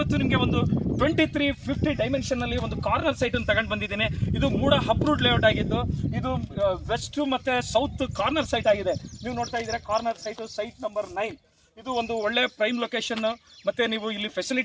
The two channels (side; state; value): both; identical; correlation 1.00